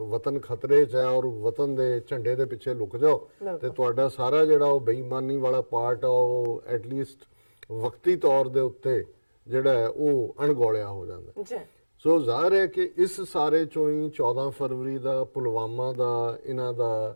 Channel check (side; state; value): both; inverted; correlation -1.00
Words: ਵਤਨ ਖਤਰੇ 'ਚ ਹੈ ਔਰ ਵਤਨ ਦੇ ਝੰਡੇ ਦੇ ਪਿੱਛੇ ਲੁਕ ਜਾਓ ਤੇ ਤੁਹਾਡਾ ਸਾਰਾ ਜਿਹੜਾ ਉਹ ਬੇਈਮਾਨੀ ਵਾਲਾ ਪਾਰਟ ਆ ਉਹ ਐਟਲੀਸਟ ਵਕਤੀ ਤੌਰ ਦੇ ਉੱਤੇ ਜਿਹੜਾ ਹੈ ਉਹ ਅਣਗੌਲਿਆ ਹੋ ਜਾਂਦਾ। ਸੋ ਜ਼ਾਹਰ ਹੈ ਕਿ ਇਸ ਸਾਰੇ ਚੋਂ ਹੀ 14 ਫਰਵਰੀ ਦਾ ਪੁਲਵਾਮਾ ਦਾ ਇਹਨਾਂ ਦਾ